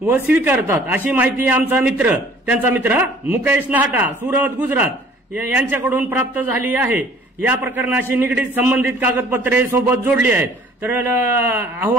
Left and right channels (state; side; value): normal; both; correlation 0.54